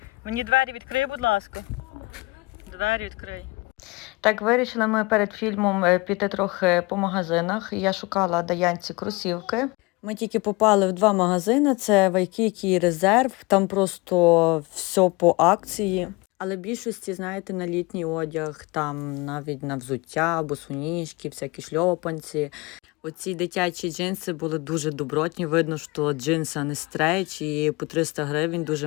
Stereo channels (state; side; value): quieter; right; 24.6 dB